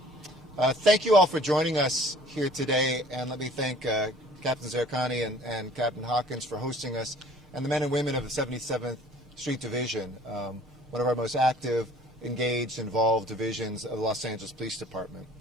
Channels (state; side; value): normal; both; correlation 0.52